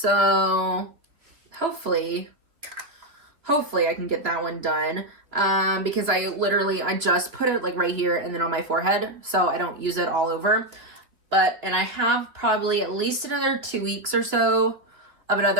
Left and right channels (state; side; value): late; left; 3.2 ms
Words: hopefully I can get that one done. Because I just put it like right here and then on my forehead, so I don't use it all over. And I have probably at least another 2 weeks or so of